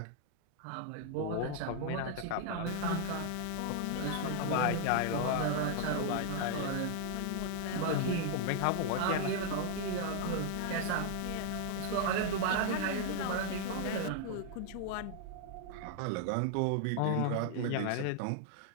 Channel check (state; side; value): different; both; correlation 0.00